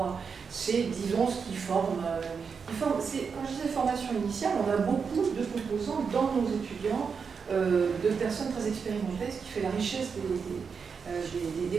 disons ce qui forme. Quand je disais formation initiale, on a beaucoup de composants dans nos étudiants, de personnes très expérimentées, ce qui fait la richesse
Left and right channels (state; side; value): quieter; left; 5.9 dB